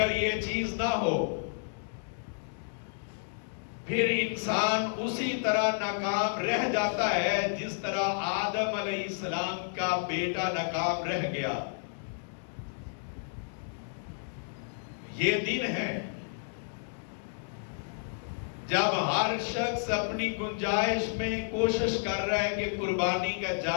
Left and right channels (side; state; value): right; silent; digital silence